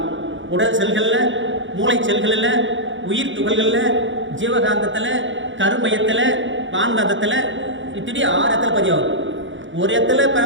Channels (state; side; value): late; left; 0.55 ms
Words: உடல் செல்களில், மூளை செல்களில், உயிர் துகள்களில், ஜீவகாந்தத்தில், கருமையத்தில், வான்காந்தத்தில், இப்படி 6 இடத்துல பதிவாகுது. ஒரு இடத்துல